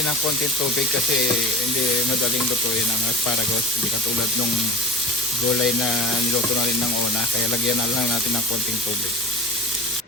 ng konting tubig kasi hindi madaling lutuin ang asparagus. Hindi katulad nung gulay na niluto na rin ng una, kaya lagyan na lang natin ng konting tubig.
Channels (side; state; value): both; normal; correlation 0.37